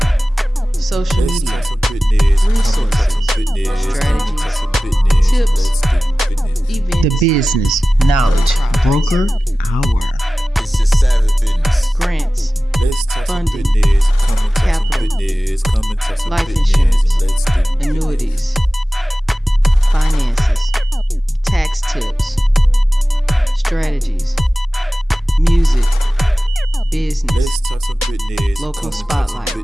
social media, resources, strategies, tips, events. The Business Knowledge Broker Hour. It's just savage business. Grants, funding, capital, life insurance, annuities, finances, tax tips, strategies, music, business, local spotlights,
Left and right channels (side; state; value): both; normal; correlation 0.96